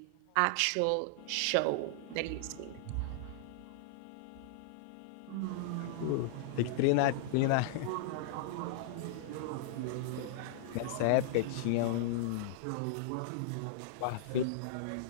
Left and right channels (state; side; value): different; both; correlation -0.01